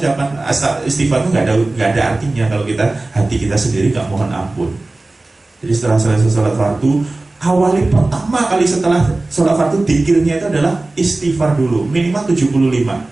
istighfar itu nggak ada artinya kalau hati kita sendiri nggak mohon ampun. Jadi setelah selesai sholat fardu, awali pertama kali setelah sholat fardu, dzikirnya itu adalah istighfar dulu, minimal 75.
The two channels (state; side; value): quieter; left; 3.0 dB